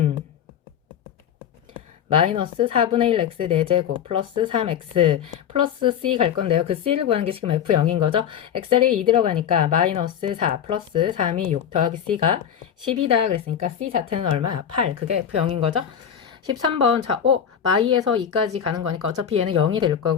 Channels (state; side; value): quieter; right; 8.7 dB